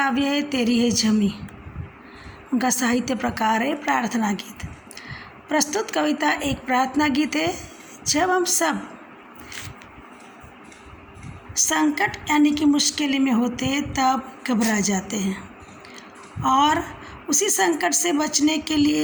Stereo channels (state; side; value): identical; both; correlation 1.00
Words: है तेरी है ज़मीं। उनका साहित्य प्रकार है प्रार्थना गीत। प्रस्तुत कविता एक प्रार्थना गीत है। जब हम सब संकट यानी कि मुश्किल में होते हैं तब घबरा जाते हैं और उसी संकट से बचने के